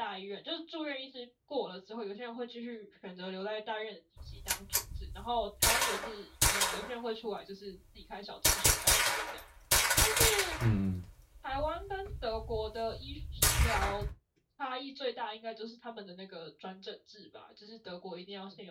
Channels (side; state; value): both; identical; correlation 1.00